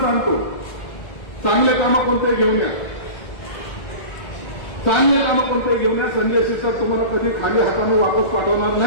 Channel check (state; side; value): late; right; 1.4 ms